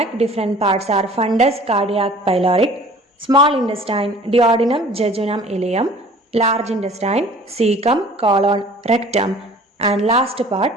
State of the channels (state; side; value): normal; both; correlation 0.48